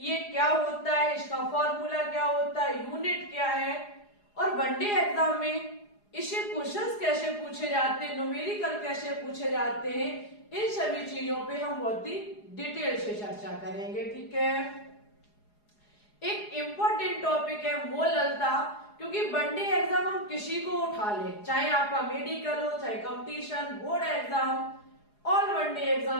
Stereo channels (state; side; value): late; right; 4.8 ms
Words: क्या होता है, इसका फॉर्मूला क्या होता है, यूनिट क्या है और वनडे एग्जाम में इससे क्वेश्चंस कैसे पूछे जाते हैं, न्यूमेरिकल कैसे पूछे जाते हैं, इन सभी चीजों पे हम बहुत ही डिटेल से चर्चा करेंगे। ठीक है, एक इम्पोर्टेंट टॉपिक है मोललता, क्योंकि वनडे एग्जाम हम किसी को उठा ले, चाहे आपका मेडिकल हो, चाहे competition, board exam, all one day